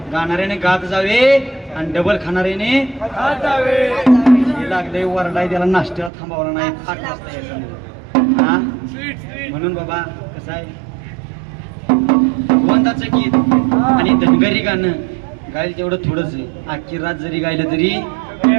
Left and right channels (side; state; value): left; drops out; at 6.1 s